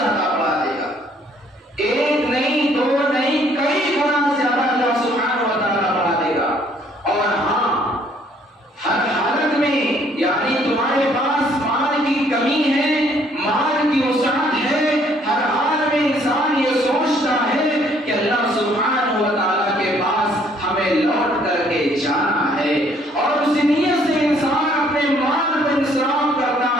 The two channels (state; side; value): normal; both; correlation 0.63